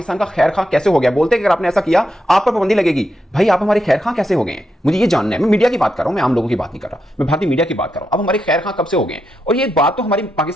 का खैर खां कैसे हो गया? बोलते हैं कि अगर आपने ऐसा किया आप पर पाबंदी लगेगी। भाई आप हमारे खैर खां कैसे हो गए हैं? मुझे ये जानना है। मैं मीडिया की बात कर रहा हूं, मैं आम लोगों की बात नहीं कर रहा, मैं भारतीय मीडिया की बात कर रहा हूं। अब हमारे खैर खां कब से हो गए हैं? और ये बात तो हमारी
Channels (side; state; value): both; normal; correlation 0.84